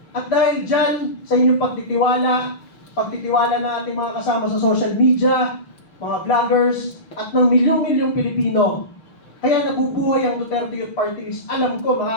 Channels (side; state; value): right; late; 6.3 ms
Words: At dahil dyan, sa inyong pagtitiwala na ating mga kasama sa social media, mga vloggers, at ng milyong-milyong Pilipino, kaya nabubuhay ang Duterte Youth Party List. Alam ko,